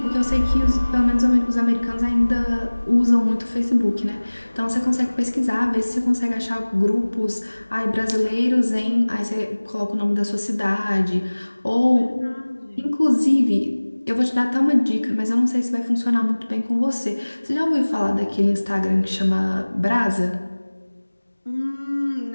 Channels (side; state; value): both; inverted; correlation -1.00